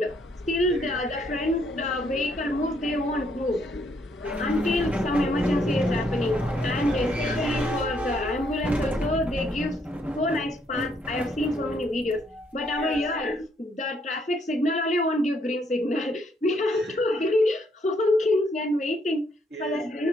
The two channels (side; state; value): both; normal; correlation 0.71